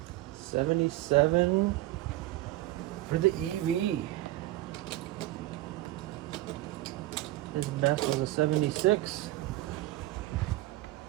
'77 for the EV. His best was a 76.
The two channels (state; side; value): quieter; left; 16.7 dB